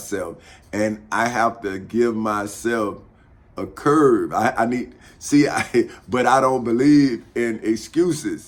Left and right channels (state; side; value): identical; both; correlation 1.00